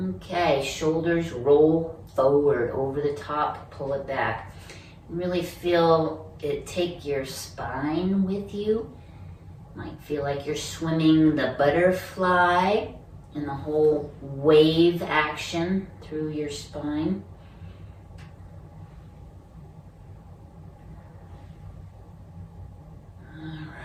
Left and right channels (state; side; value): identical; both; correlation 1.00